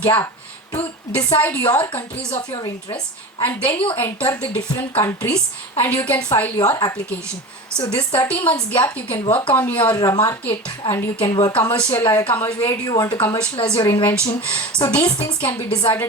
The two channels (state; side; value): normal; both; correlation 0.31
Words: to decide your countries of your interest, and then you enter the different countries and you can file your application. So this 30 months gap, you can work on your market and you can work where do you want to commercialize your invention. So these things can be decided